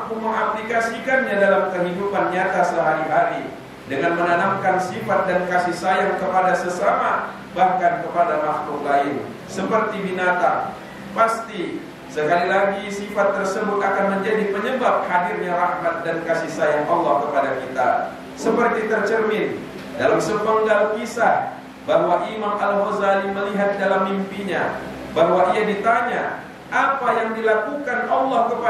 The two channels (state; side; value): identical; both; correlation 1.00